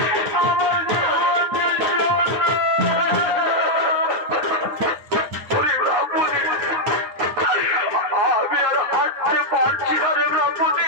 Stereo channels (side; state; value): left; late; 9.4 ms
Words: আমার জীবন যে শূন্য। আমি আর হাঁটতে পারছি না রে ব্রাহ্মণী,